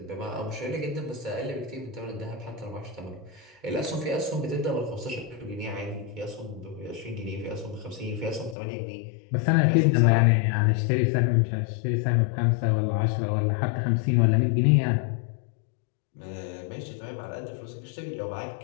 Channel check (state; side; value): drops out; right; at 8.6 s